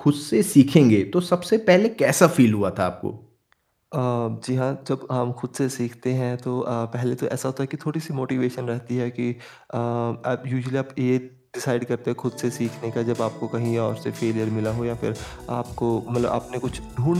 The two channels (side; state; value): both; identical; correlation 1.00